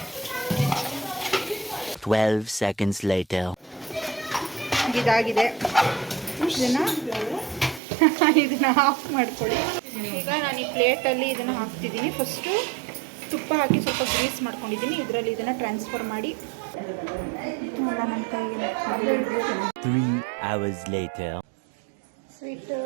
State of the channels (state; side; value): drops out; left; at 7.8 s